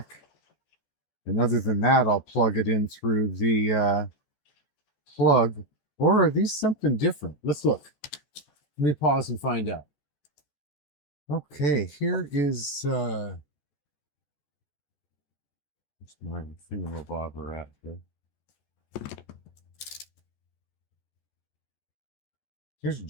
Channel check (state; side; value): late; right; 14 ms